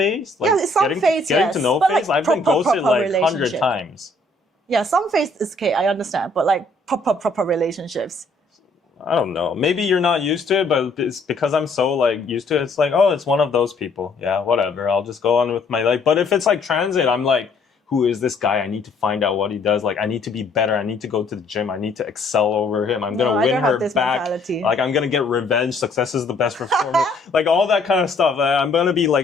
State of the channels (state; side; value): quieter; right; 3.1 dB